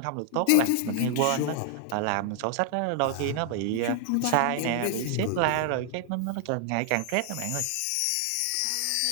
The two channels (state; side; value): different; both; correlation 0.00